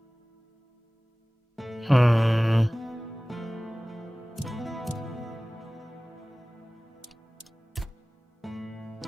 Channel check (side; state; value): both; normal; correlation 0.98